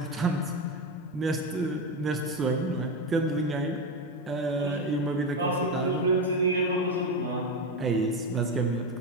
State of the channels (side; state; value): both; normal; correlation 0.14